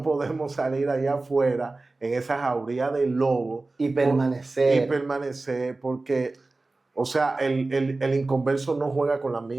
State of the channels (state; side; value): quieter; left; 3.3 dB